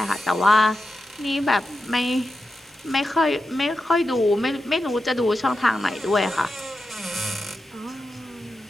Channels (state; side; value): normal; both; correlation 0.89